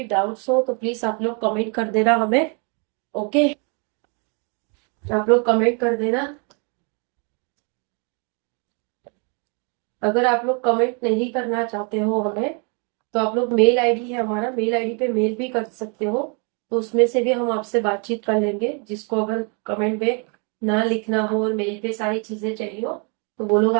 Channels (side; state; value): left; quieter; 36.2 dB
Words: डाउट्स हो तो प्लीज आप लोग कमेंट कर देना हमें। ओके, आप लोग कमेंट कर देना। अगर आप लोग कमेंट नहीं करना चाहते हो हमें, तो आप लोग मेल आईडी है हमारा, मेल आईडी पे मेल भी कर सकते हो। तो उसमें से भी हम आपसे बातचीत कर लेंगे। जिसको अगर कमेंट में ना लिखना हो और मेल पे सारी चीजें चाहिए हो, तो वो लोग